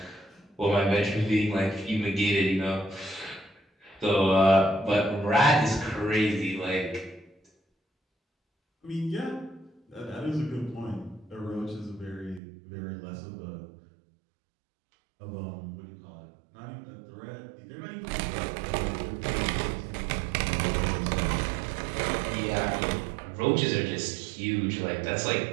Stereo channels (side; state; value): left; drops out; at 12.4 s